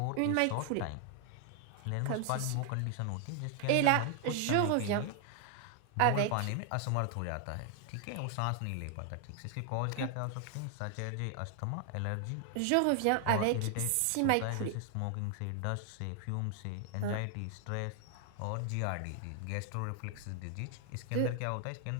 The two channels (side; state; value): both; different; correlation 0.00